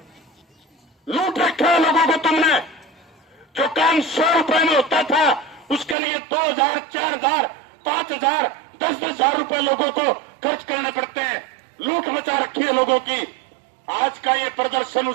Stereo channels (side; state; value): left; drops out; at 6.0 s